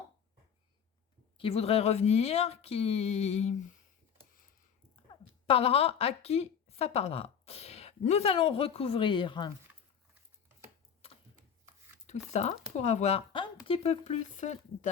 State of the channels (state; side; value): quieter; right; 7.5 dB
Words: qui voudrait revenir, qui parlera à qui ça parlera. Nous allons recouvrir tout ça pour avoir un petit peu plus